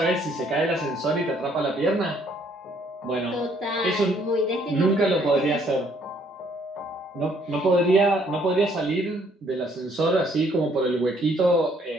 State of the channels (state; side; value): normal; both; correlation 0.65